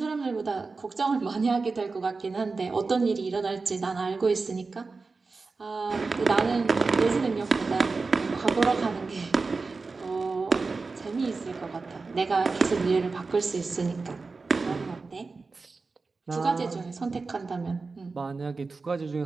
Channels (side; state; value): left; quieter; 4.1 dB